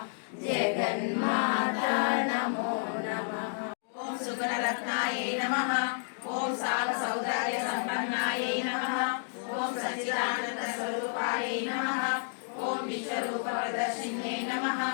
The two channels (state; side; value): silent; right; digital silence